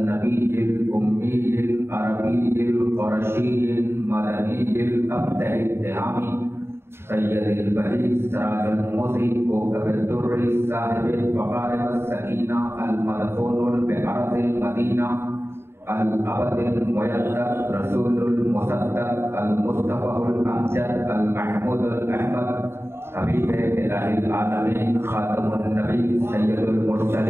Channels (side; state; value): left; late; 0.12 ms